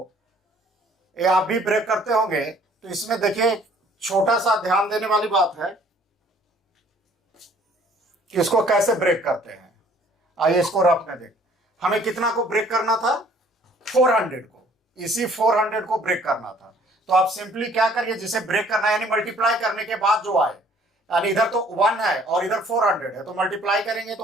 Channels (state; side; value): normal; both; correlation 0.57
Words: ये आप भी ब्रेक करते होंगे, तो इसमें देखिए छोटा सा ध्यान देने वाली बात है कि इसको कैसे ब्रेक करते हैं। आइए इसको रफ में देख, हमें कितना को ब्रेक करना था, 400 को, इसी 400 को ब्रेक करना था। तो आप सिंपली क्या करिए, जिसे ब्रेक करना है यानी मल्टीप्लाई करने के बाद जो आए, यानी इधर तो 1 है और इधर 400 है, तो मल्टीप्लाई करेंगे